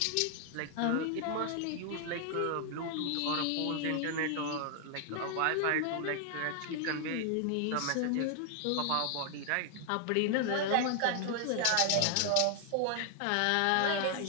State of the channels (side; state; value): both; different; correlation 0.00